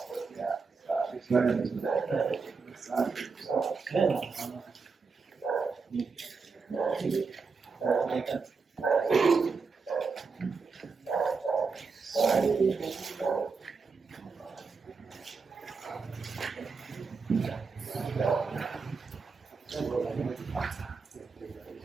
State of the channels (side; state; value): left; quieter; 4.8 dB